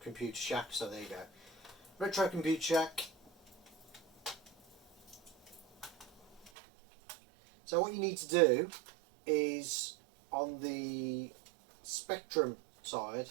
Computer Shack. So there you go. Retro Computer Shack. So what you need to do is on the Spectrum side,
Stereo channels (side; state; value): left; drops out; at 6.5 s